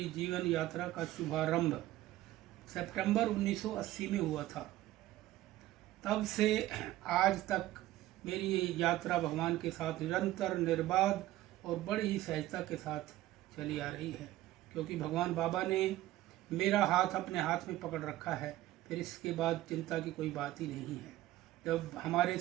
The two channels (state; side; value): quieter; left; 15.5 dB